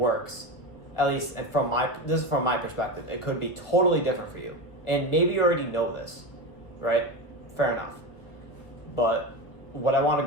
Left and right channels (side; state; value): right; late; 1.6 ms